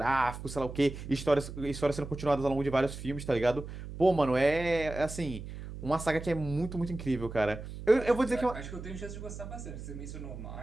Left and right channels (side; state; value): right; noise; hum, 10 dB below the sound